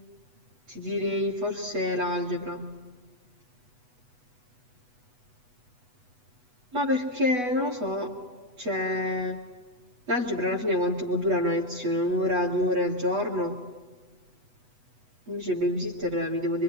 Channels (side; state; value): left; late; 8.1 ms